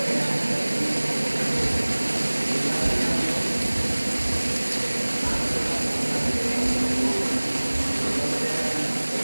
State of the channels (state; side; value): inverted; both; correlation -1.00